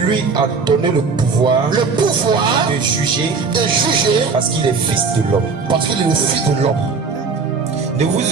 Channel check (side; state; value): left; quieter; 4.8 dB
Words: a donné le pouvoir de juger parce qu'il est Fils de l'homme. Ne vous